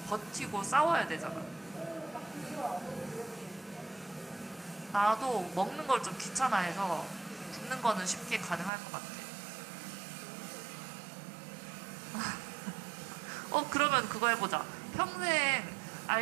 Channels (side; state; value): left; drops out; at 8.7 s